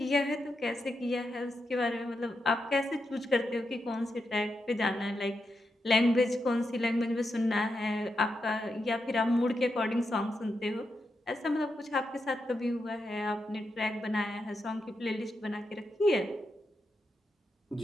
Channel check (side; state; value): both; normal; correlation 0.85